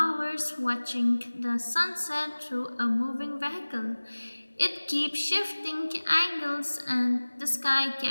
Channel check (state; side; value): inverted; both; correlation -1.00